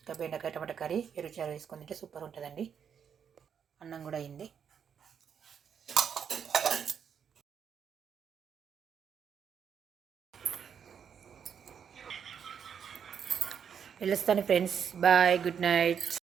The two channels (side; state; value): left; quieter; 7.6 dB